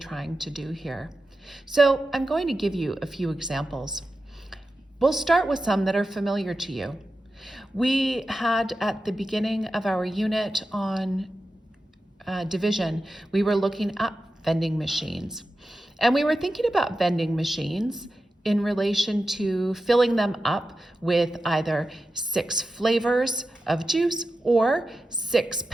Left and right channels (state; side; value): normal; both; correlation 0.92